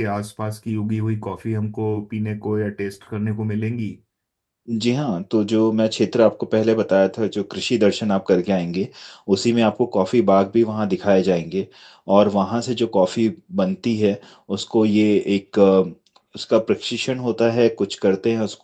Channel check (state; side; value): identical; both; correlation 1.00